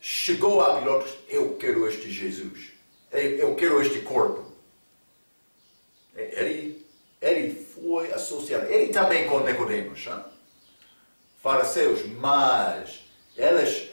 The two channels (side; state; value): both; inverted; correlation -1.00